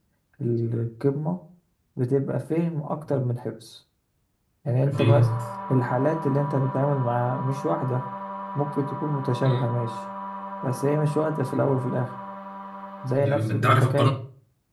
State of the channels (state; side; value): identical; both; correlation 1.00